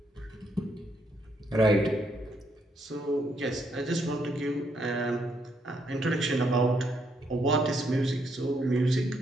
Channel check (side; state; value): both; normal; correlation 0.74